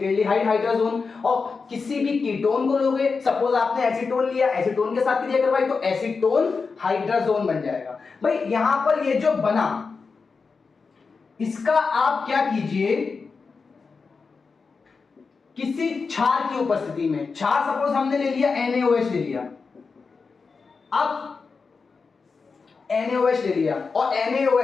हाइड्रोजन, और किसी भी कीटोन को लोगे, सपोज आपने एसीटोन लिया, एसीटोन के साथ क्रिया करवाई तो एसीटोन हाइड्रोजन बन जाएगा। भाई यहां पर ये जो बना, इसका आप क्या कीजिए, किसी क्षार की उपस्थिति में, क्षार सपोज हमने ले लिया NaOH ले लिया, अब NaOH ले लिया और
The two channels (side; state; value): right; quieter; 4.8 dB